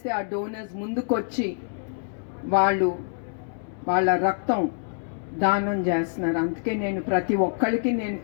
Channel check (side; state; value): right; silent; 61 dB below the other